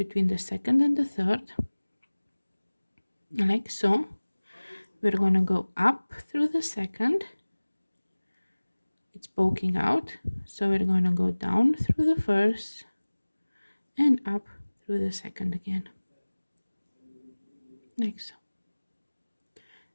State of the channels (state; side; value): inverted; both; correlation -1.00